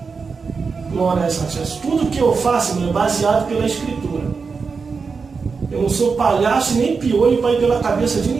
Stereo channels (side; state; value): left; quieter; 5.0 dB